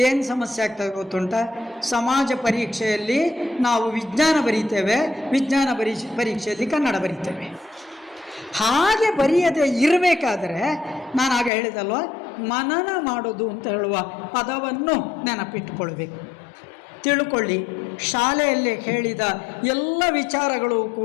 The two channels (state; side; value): drops out; right; at 11.5 s